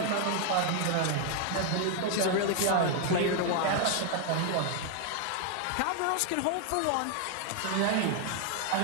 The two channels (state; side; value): different; both; correlation 0.00